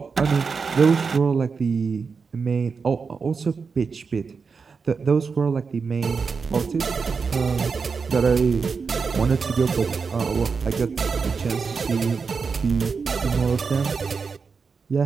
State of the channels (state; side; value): quieter; left; 5.2 dB